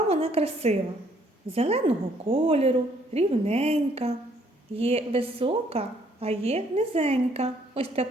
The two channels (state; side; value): normal; both; correlation 0.65